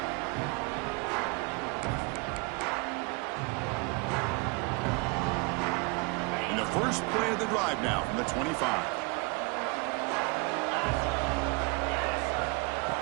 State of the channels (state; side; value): quieter; left; 29.9 dB